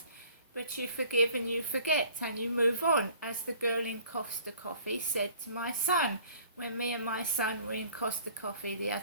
But you forgive and you forget and you move on, as the girl in Costa Coffee said to my son. When me and my son were in Costa Coffee the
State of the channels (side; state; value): both; inverted; correlation -0.53